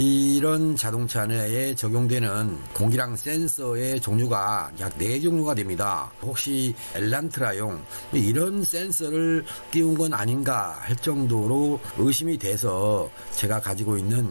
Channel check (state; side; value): inverted; both; correlation -1.00